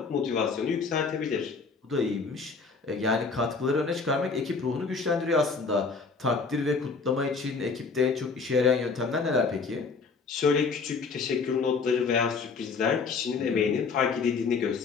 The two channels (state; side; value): quieter; right; 4.7 dB